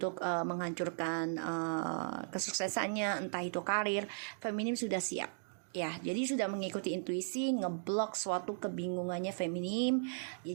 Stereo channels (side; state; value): left; silent; digital silence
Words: menghancurkan kesuksesannya, entah itu karir. Feminim sudah siap ya, jadi sudah mengikuti intuisi, ngeblok suatu kebingungannya feminim ya.